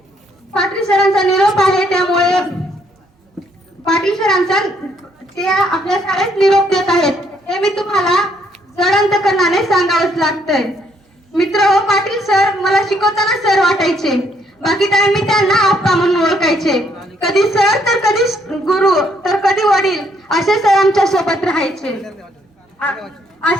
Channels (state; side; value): normal; both; correlation 0.69